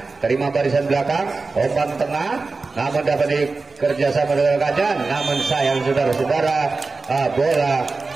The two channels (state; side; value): quieter; left; 3.9 dB